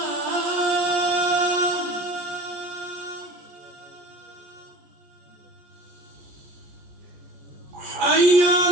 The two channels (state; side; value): late; left; 14 ms